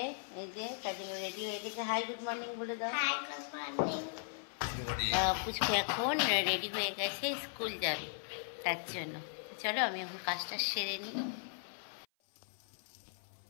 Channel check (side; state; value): right; silent; 53 dB below the other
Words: এই যে কাজে রেডি হয়ে গেছে। হাই গুড মর্নিং বলে দাও। Hi good morning. পুচকু এখন রেডি হয়ে গেছে, স্কুল যাবে, তার জন্য চলো আমি এখন কাজটা সেরে নিই।